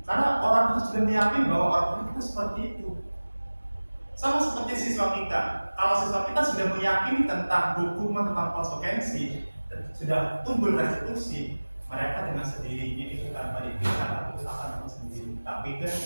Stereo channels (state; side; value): inverted; both; correlation -1.00